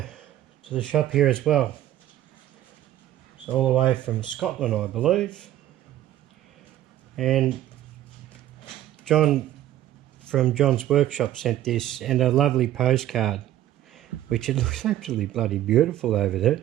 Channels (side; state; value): left; quieter; 12.9 dB